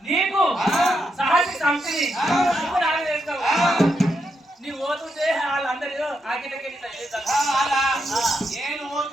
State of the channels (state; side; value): normal; both; correlation 0.82